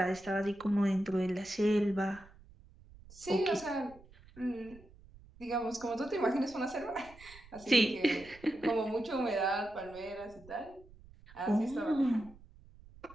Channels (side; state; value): right; noise; rumble, 22 dB below the sound